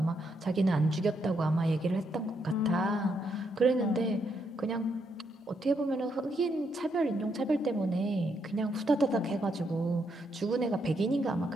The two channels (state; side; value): normal; both; correlation 0.77